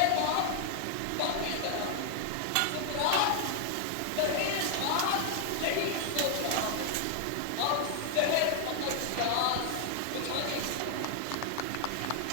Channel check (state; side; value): different; both; correlation 0.00